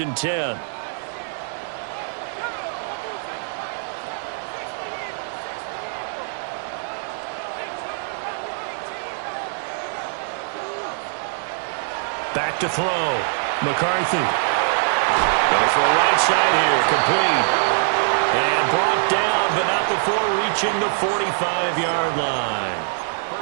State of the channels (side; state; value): left; silent; digital silence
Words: and 10. Back to throw. McCarthy. Going to throw right side here. Complete. And brought down, but not before reaching the 45-yard line.